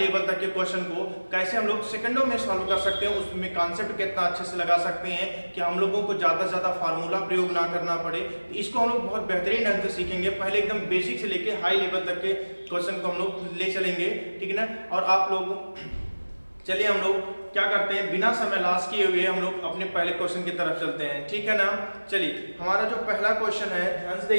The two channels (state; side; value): inverted; both; correlation -1.00